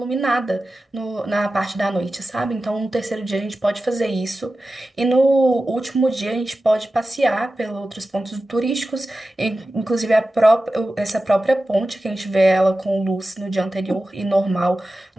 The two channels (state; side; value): normal; both; correlation 0.94